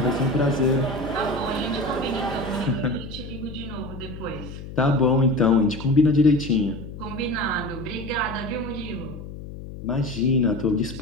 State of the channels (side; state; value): left; noise; hum, 11 dB below the sound